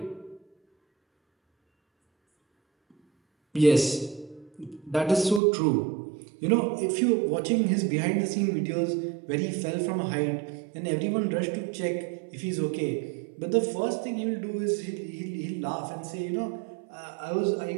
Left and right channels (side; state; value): left; drops out; at 5.4 s